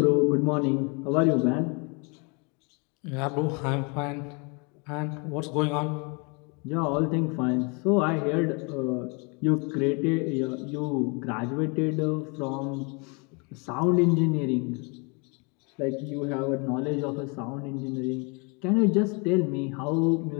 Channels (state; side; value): quieter; right; 32.5 dB